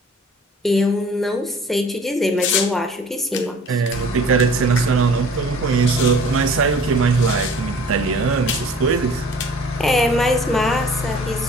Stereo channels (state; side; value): normal; both; correlation 0.50